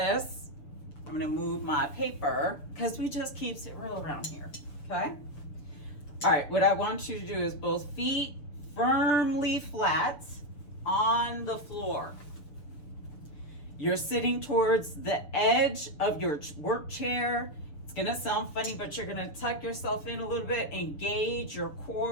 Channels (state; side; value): late; right; 6.8 ms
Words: I'm going to move my paper because we just keeps it real around here. Okay. All right. What I want you to do is both feet firmly flat on the floor. You're sitting towards the edge of your work chair. It's going to sound funny, but you're going to tuck yourself in a little bit, engage your